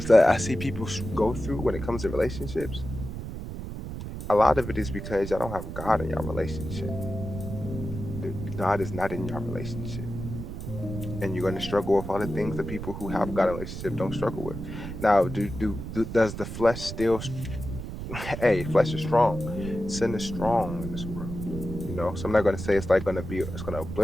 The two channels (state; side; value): noise; right; rumble, 8 dB below the sound